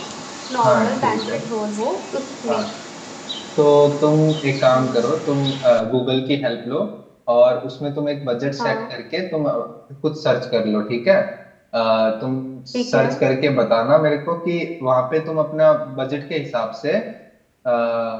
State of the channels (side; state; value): both; identical; correlation 1.00